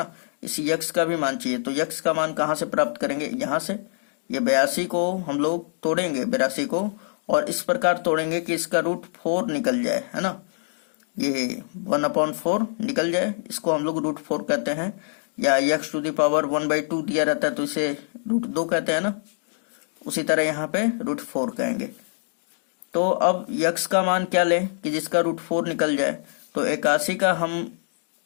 इस x का भी मान चाहिए, तो x का मान कहाँ से प्राप्त करेंगे, यहाँ से। ये 82 को हम लोग तोड़ेंगे, 82 को, और इस प्रकार तोड़ेंगे कि इसका √4 निकल जाए, है ना। ये 1/4 निकल जाए, इसको हम लोग √4 कहते हैं, या x टू द पावर 1/2 दिया रहता है तो इसे √2 कहते हैं ना। उसी तरह यहाँ पे √4 कहेंगे। तो अब x का मान क्या लें कि जिसका √4 निकल जाए। तो 81 का हम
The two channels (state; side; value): silent; right; digital silence